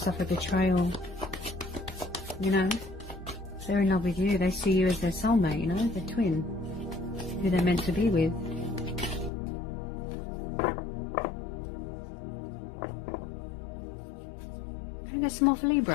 suffered betrayal. You know, they're in love with you, they see you as their soulmate, you know, their twin, who they're meant to be with. Can I get some more for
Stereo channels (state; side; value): drops out; right; at 9.3 s